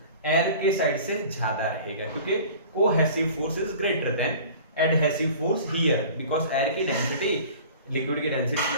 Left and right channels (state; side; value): inverted; both; correlation -0.43